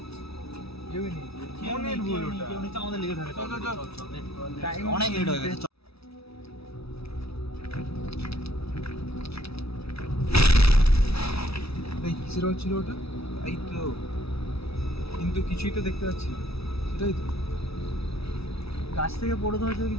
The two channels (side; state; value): right; late; 0.77 ms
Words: কেউই নেই, মনের ভুল ওটা। আমাদের লেট হবে, চল, চল, চল। Time অনেক লেট হয়ে গেছে। এই কিসের হচ্ছিল ওটা? এই তো, কিন্তু কিছুই তো দেখতে পাচ্ছি না। সেটাই তো। গাছ থেকে পড়ে ধরেছে